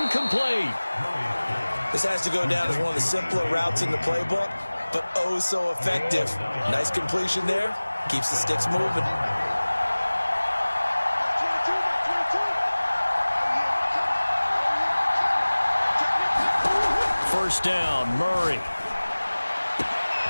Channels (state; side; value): inverted; both; correlation -1.00